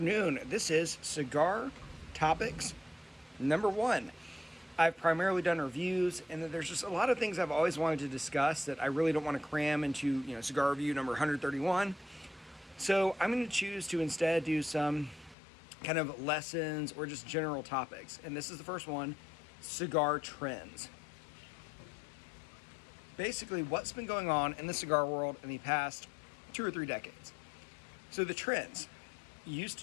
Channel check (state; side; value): drops out; right; at 15.4 s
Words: This is Cigar Topics number 1. I've primarily done reviews, and there's just a lot of things I've always wanted to discuss that I really don't want to cram into, cigar review number 131. So I'm going to choose to instead do some kind of lessons or just general topics. And this is the first one, cigar trends. Basically, what's been going on in the cigar world in the past 2 or 3 decades. So the trends. Used